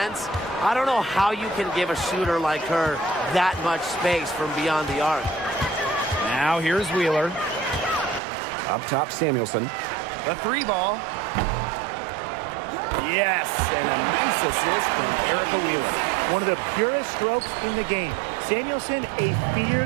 I don't know how you can give a shooter like her that much space from beyond the arc. Now here's Wheeler. Up top, Samuelson. The 3 ball. Yes, and a nice assist from Erica Wheeler. One of the purest strokes in the game. Samuelson, a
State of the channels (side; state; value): left; drops out; at 8.2 s